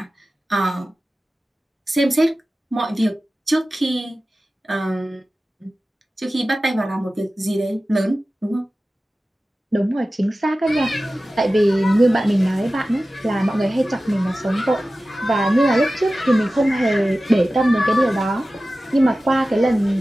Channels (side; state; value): both; normal; correlation 0.95